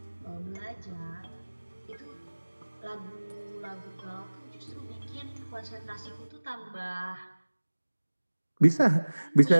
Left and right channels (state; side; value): inverted; both; correlation -1.00